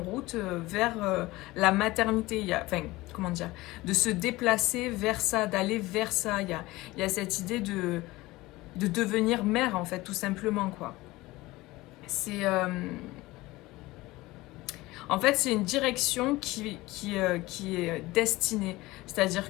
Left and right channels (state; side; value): quieter; right; 19.7 dB